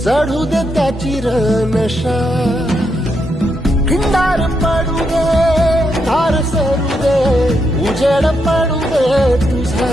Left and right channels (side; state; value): both; normal; correlation 0.81